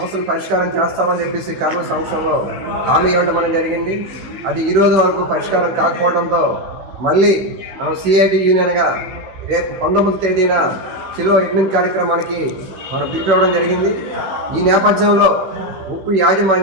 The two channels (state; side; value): late; left; 15 ms